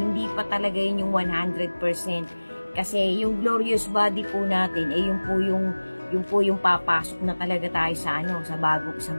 pa talaga yun yung 100%. Kasi yung glorious body po natin, yun po yung papasok na talaga tayo sa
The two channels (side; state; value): both; inverted; correlation -1.00